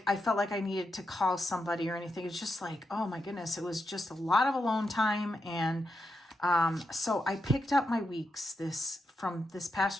I felt like I needed to call somebody or anything. It's just like, oh my goodness, it was just a lot of alone time. And so I picked up my weeks from this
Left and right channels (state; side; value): normal; both; correlation 0.85